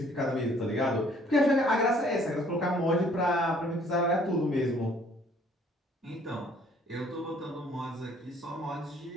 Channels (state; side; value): normal; both; correlation 0.59